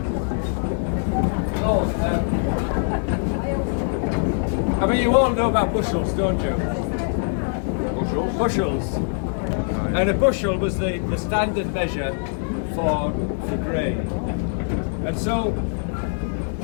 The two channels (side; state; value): right; silent; 63 dB below the other